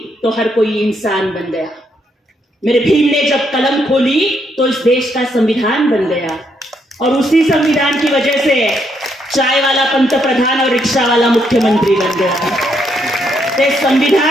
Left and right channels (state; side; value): normal; both; correlation 0.75